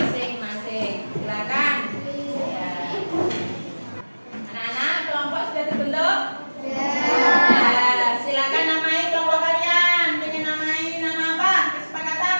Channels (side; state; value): both; inverted; correlation -1.00